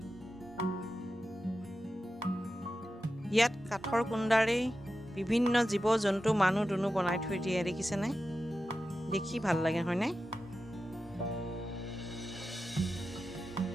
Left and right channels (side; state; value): both; normal; correlation 0.92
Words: ইয়াত কাঠৰ কুণ্ডাৰে বিভিন্ন জীৱ জন্তু মানুহ দুনু বনাই থৈ দিয়ে দেখিছেনে দেখি ভাল লাগে হয়নে